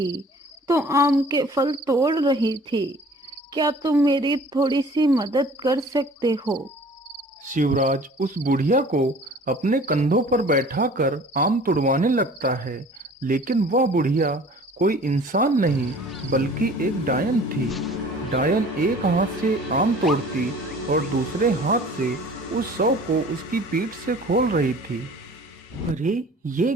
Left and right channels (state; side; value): normal; both; correlation 0.48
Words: तो आम के फल तोड़ रही थी। क्या तुम मेरी थोड़ी सी मदद कर सकते हो। शिवराज उस बुढ़िया को अपने कंधों पर बैठाकर आम तुड़वाने लगता है, लेकिन वह बुढ़िया कोई इंसान नहीं बल्कि एक डायन थी। डायन एक हाथ से आम तोड़ती और दूसरे हाथ से उस 100 को उसकी पीठ से खोल रही थी। अरे ये